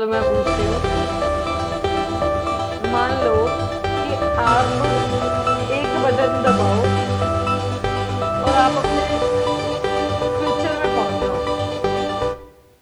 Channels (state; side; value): identical; both; correlation 1.00